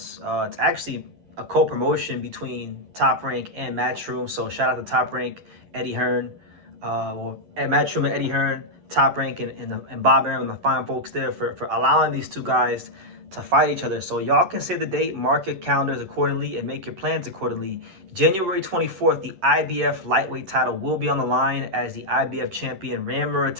It's actually a co-promotion between Top Rank and Matchroom. So shout out to Top Rank, Eddie Hearn, and Matchroom and Eddie Hearn, Top Rank and Bob Arum and the fine folks there for allowing these two guys to fight each other. So y'all can say the date, mark your calendars accordingly, and make your plans accordingly. January 24th, the IBF lightweight title will be on the line as the IBF champion Raymond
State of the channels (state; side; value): late; left; 11 ms